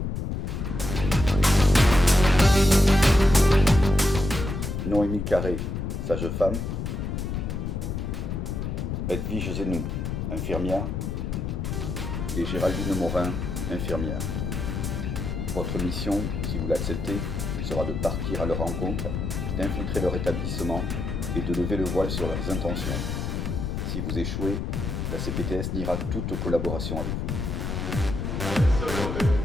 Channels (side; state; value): left; noise; rumble, 3 dB below the sound